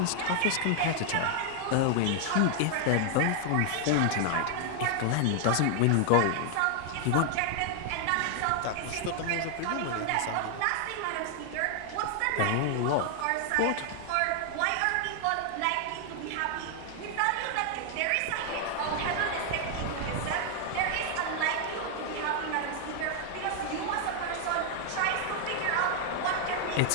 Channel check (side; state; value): both; different; correlation 0.00